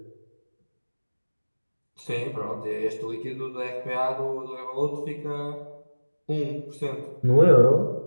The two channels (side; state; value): both; inverted; correlation -1.00